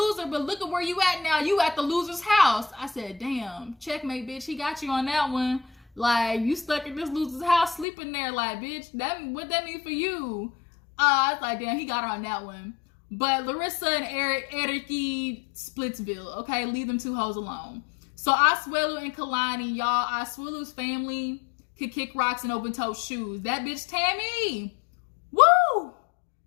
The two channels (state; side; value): drops out; right; at 7.9 s